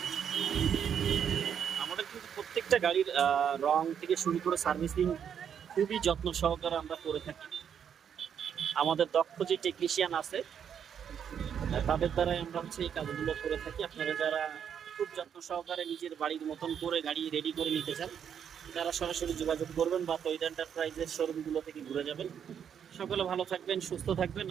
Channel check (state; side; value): quieter; left; 8.2 dB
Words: আমাদের কিন্তু প্রত্যেকটা গাড়ির রং থেকে শুরু করে সার্ভিসিং খুবই যত্ন সহকারে আমরা করে থাকি। আমাদের দক্ষ যে টেকনিশিয়ান আছে তাদের দ্বারাই আমরা এই কাজগুলো করে থাকি। আপনারা যারা খুব যত্ন সহকারে নিজের বাড়ির মতন করে গাড়ি রেডি করে নিতে চান, তারা সরাসরি যোগাযোগ করবেন বা তৈরি এন্টারপ্রাইজের শোরুমগুলো থেকে ঘুরে যাবেন। সকলে ভালো থাকবেন, সুস্থ থাকবেন।